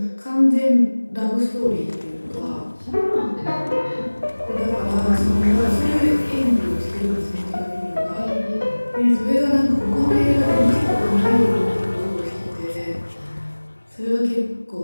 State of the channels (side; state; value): both; inverted; correlation -1.00